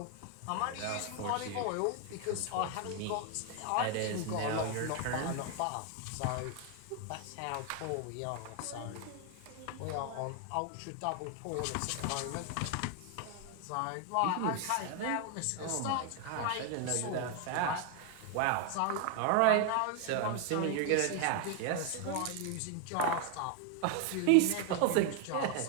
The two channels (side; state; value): both; different; correlation 0.01